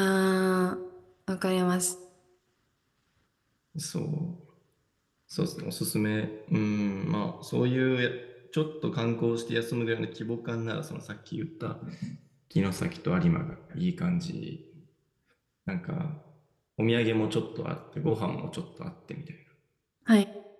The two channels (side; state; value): both; identical; correlation 1.00